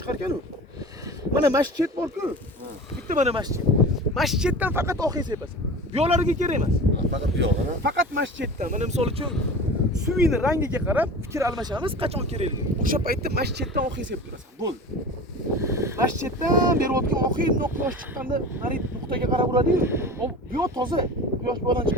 ekan-u. Mana masjid bor-ku. Bitta mana masjid. Masjiddan faqat oqing sepasan. Bu yo'llarga kerak emas. Faqat bu yo'qmi? Faqat masjiddan. Mana misol uchun suvini rangiga qarab fikr almashamiz, qachon kerakligi. O'sha paytda masjiddan oqing sepib turasan. Bo'ldi. Masjiddan berayotgan oqing quyosh chiqqanda mana nuqtaga qarab uradi-yu. Bu yo'q toza. Quyosh bu yoqdan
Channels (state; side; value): normal; both; correlation 0.35